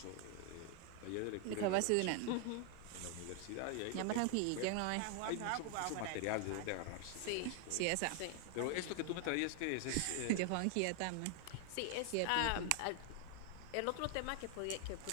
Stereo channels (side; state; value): both; different; correlation 0.00